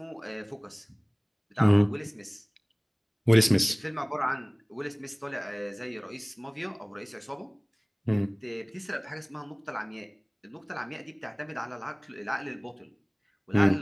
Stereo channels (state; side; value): identical; both; correlation 1.00